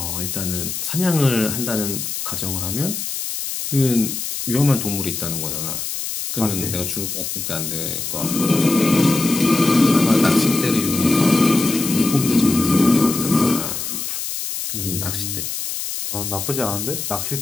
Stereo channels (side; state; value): left; noise; hiss, 5 dB below the sound